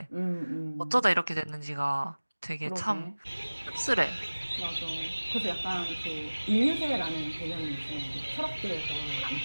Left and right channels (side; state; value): both; inverted; correlation -1.00